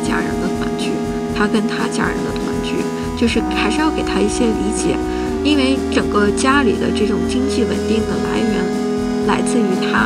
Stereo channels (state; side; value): identical; both; correlation 1.00